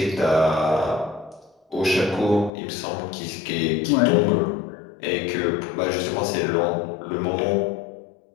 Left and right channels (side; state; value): right; drops out; at 2.5 s